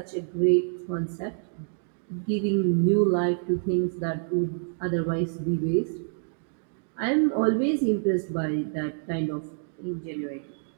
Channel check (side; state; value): left; silent; digital silence